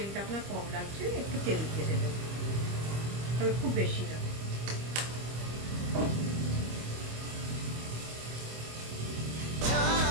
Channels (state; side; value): late; left; 25 ms